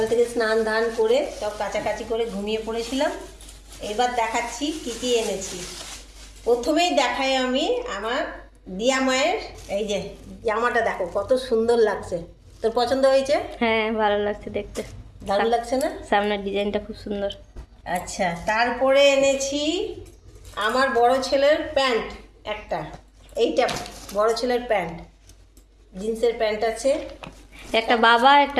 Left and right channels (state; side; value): identical; both; correlation 1.00